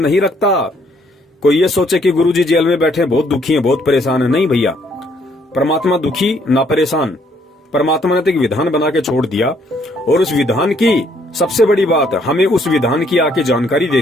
रखता। कोई ये सोचे कि गुरुजी जेल में बैठे बहुत दुखी हैं, बहुत परेशान है, नहीं भैया, परमात्मा दुखी ना परेशान। परमात्मा ने तो एक विधान बना के छोड़ दिया और उस विधान की सबसे बड़ी बात, हमें उस विधान की आके जानकारी दे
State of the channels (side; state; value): both; normal; correlation 0.67